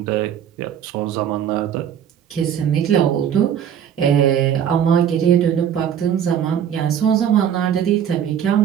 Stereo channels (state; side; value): quieter; left; 9.0 dB